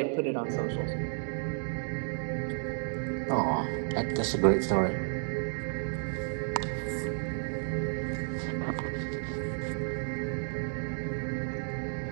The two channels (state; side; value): silent; left; 56 dB below the other